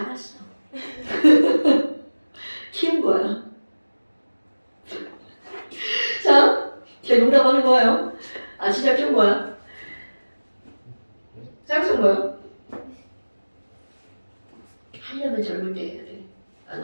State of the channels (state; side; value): inverted; both; correlation -1.00